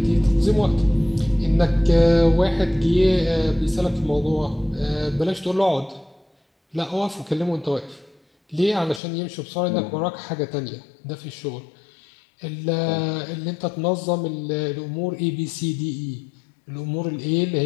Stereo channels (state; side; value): drops out; right; at 9.0 s